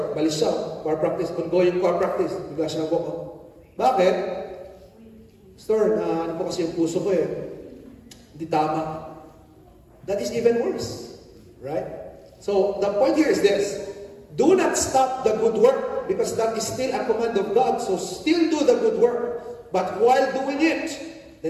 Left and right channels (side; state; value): both; identical; correlation 1.00